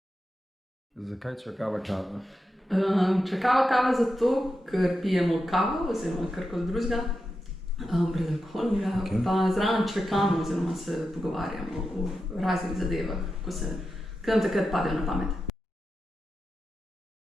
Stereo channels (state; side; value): normal; both; correlation 0.89